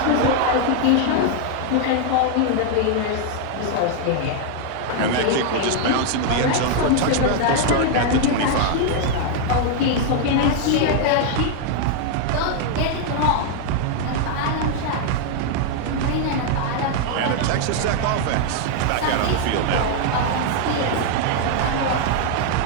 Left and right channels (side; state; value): both; different; correlation 0.00